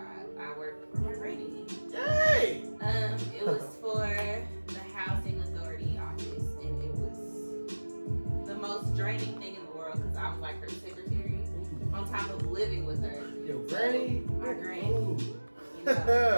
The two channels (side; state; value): both; inverted; correlation -1.00